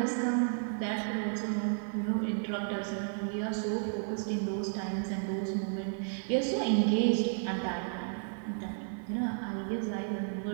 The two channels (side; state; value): left; silent; 56 dB below the other